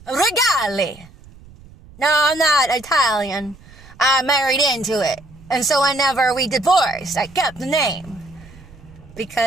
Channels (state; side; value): noise; right; rumble, 22 dB below the sound